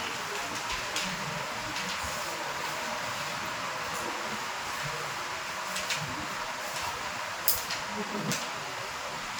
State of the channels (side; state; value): both; identical; correlation 1.00